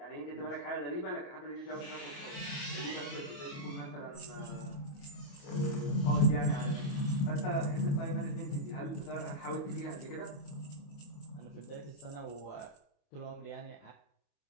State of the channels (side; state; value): right; late; 28 ms